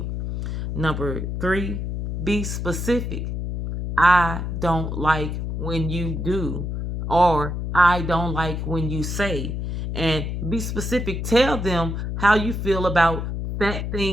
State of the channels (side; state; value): left; noise; hum, 3 dB below the sound